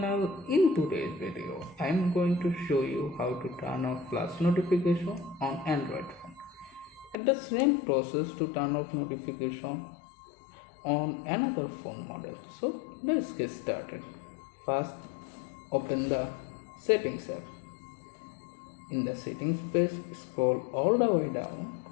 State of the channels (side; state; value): right; drops out; at 7.2 s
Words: In today's video, I am going to show you how to turn off flash notification on Android phone. And the same process to turn off notification on another phone model. So let's get started. First, open the settings app. In the settings page, scroll all the way down.